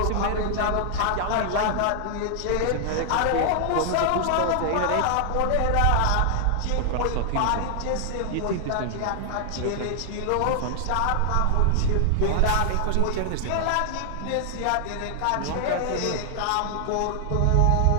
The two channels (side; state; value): both; different; correlation 0.00